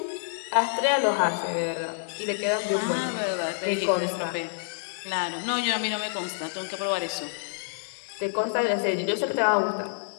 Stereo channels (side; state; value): right; silent; digital silence